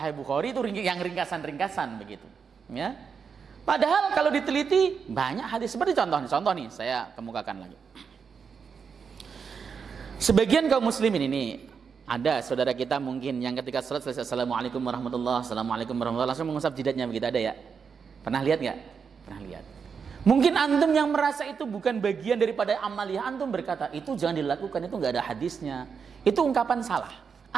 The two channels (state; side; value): quieter; left; 6.1 dB